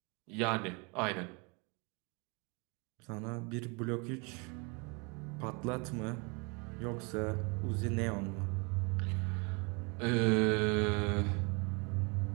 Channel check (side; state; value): left; quieter; 31.1 dB